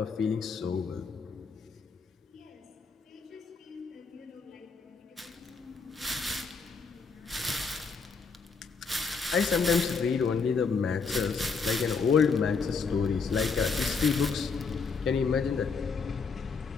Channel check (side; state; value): right; quieter; 5.0 dB